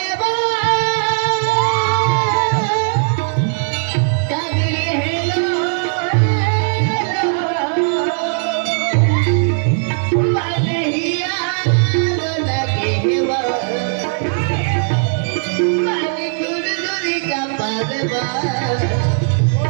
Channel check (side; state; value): left; silent; digital silence